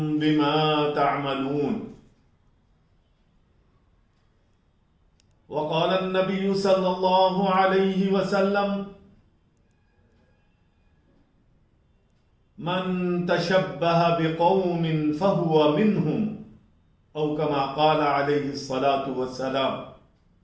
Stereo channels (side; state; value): both; identical; correlation 1.00